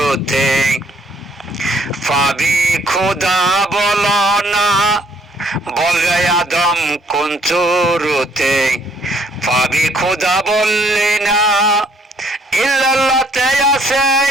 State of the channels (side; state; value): both; normal; correlation 0.65